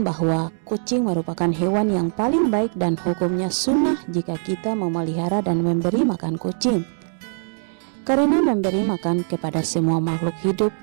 bahwa kucing merupakan hewan yang paling baik dan hukumnya sunnah jika kita memelihara dan memberi makan kucing. Karena memberi makan kepada semua makhluk hidup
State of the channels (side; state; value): left; silent; 64 dB below the other